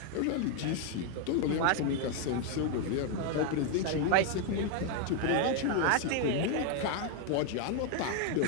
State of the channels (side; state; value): both; different; correlation 0.00